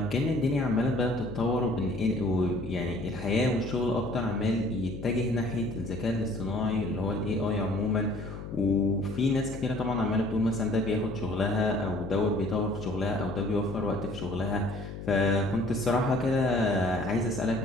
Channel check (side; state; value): left; noise; hum, 10 dB below the sound